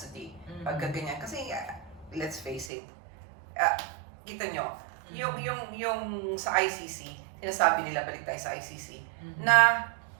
Mm. Pagka ganyan. Kasi, let's face it, kita nyo, yung sa ICC, sinasabi nila, balik tayo sa ICC, na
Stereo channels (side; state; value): left; drops out; at 2.7 s